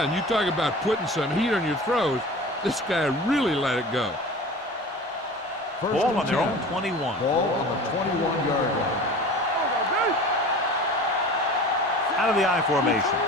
and you talk about putting some heat on your throws. This guy really let it go. Ball on their own 21. Ball on the 21-yard line. Out of the I formation.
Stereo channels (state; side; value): normal; both; correlation 0.38